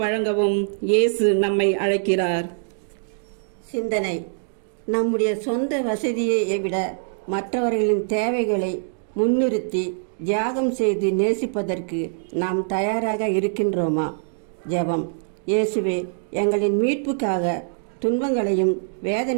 வழங்கவும் இயேசு நம்மை அழைக்கிறார். சிந்தனை. நம்முடைய சொந்த வசதியை விட மற்றவர்களின் தேவைகளை முன்னிறுத்தி தியாகம் செய்து நேசிப்பதற்கு நாம் தயாராக இருக்கின்றோமா? ஜெபம். இயேசுவே, எங்களின் மீட்புக்காக துன்பங்களையும்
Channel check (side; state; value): left; silent; digital silence